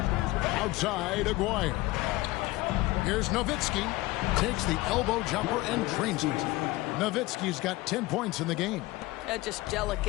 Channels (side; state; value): right; quieter; 19.7 dB